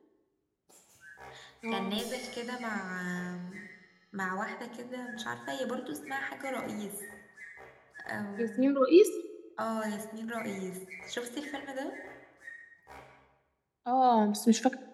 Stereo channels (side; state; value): both; identical; correlation 1.00